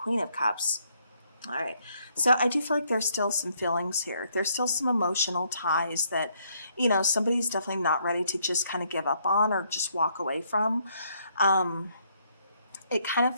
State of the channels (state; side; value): inverted; both; correlation -0.71